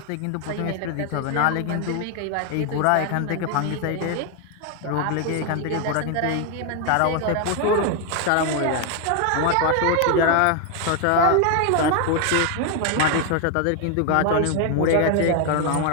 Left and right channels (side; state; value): both; different; correlation 0.01